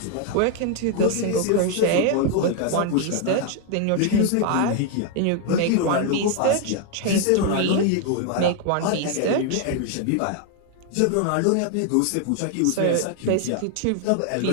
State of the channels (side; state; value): both; different; correlation 0.00